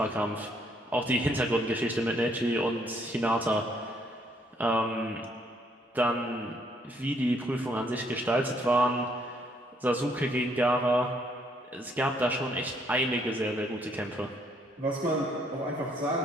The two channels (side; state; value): both; normal; correlation 0.69